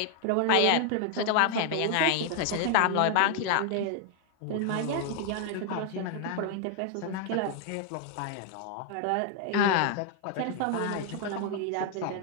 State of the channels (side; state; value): both; different; correlation 0.00